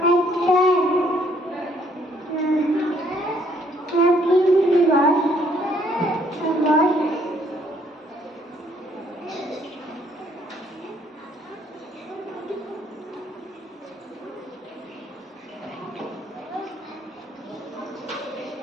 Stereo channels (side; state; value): both; normal; correlation 0.66